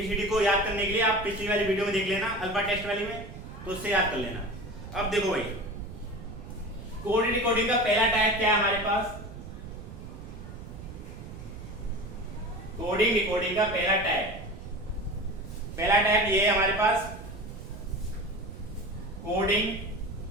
को याद करने के लिए आप पिछली वाली वीडियो में देख लेना, अल्फा टेस्ट वाली में, तो उससे याद कर लेना। अब देखो भाई, कोडिंग डिकोडिंग का पहला टाइप क्या है हमारे पास, कोडिंग डिकोडिंग का पहला टाइप ये है हमारे पास, coding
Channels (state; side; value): noise; right; rumble, 12 dB below the sound